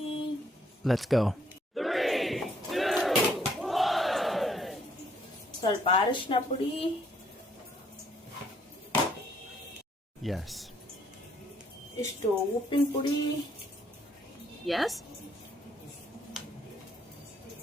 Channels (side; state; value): both; normal; correlation 0.67